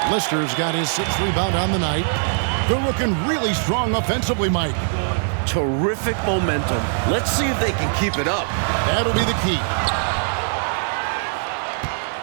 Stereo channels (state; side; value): silent; left; digital silence